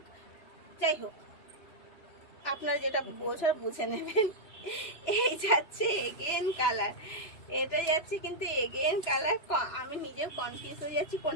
যাই হোক, আপনারা যেটা বোঝার বুঝে নেবেন। এই যাচ্ছে এগেন কালার। এটা যাচ্ছে কিন্তু এগেন কালার। আমি নিজেও কনফিউজ হয়ে যাচ্ছি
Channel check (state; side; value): late; right; 3.0 ms